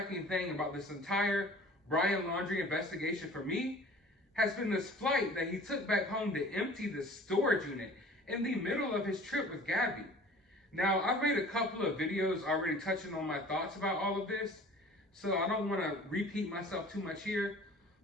thing about this entire Brian Laundrie investigation for me has been this flight that he took back home to empty the storage unit in the middle of his trip with Gabby. Now, I've made a couple of videos already touching on my thoughts about all of this, so I don't want to repeat myself too much here.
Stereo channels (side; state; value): both; normal; correlation 0.47